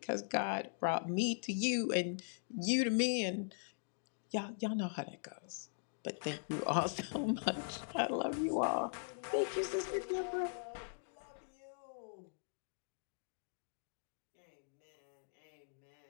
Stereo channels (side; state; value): right; silent; digital silence